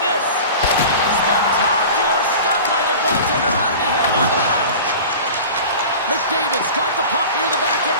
this. Spectacular stop by the goaltender. How did he hang on to that? McDavid's got the puck near the back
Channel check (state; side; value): inverted; both; correlation -0.37